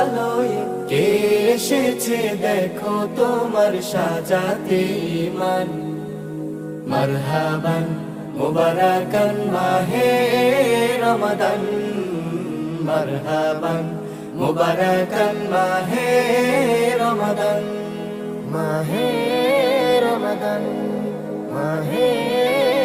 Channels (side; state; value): both; identical; correlation 1.00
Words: লয়ে কে এসেছে দেখো তোমার সাজাতে ইমান। মারহাবান মুবারাকান মাহে রমাদান, মারহাবান মুবারাকান মাহে রমাদান, মাহে রমাদান, মাহে